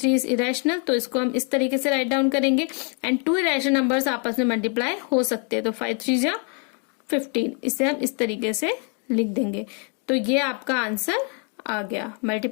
is irrational, तो इसको हम इस तरीके से राइट डाउन करेंगे। एंड 2 इरेशनल नंबर्स आपस में मल्टीप्लाई हो सकते हैं, तो 5 3 जा 15, इसे हम इस तरीके से लिख देंगे। तो ये आपका आंसर आ गया,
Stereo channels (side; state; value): right; quieter; 38.4 dB